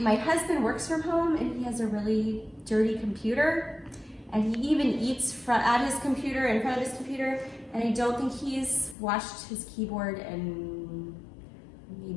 husband works from home and he has a really dirty computer. And he even eats at his computer, in front of his computer. And I don't think he's washed his keyboard in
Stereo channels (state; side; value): drops out; right; at 9.0 s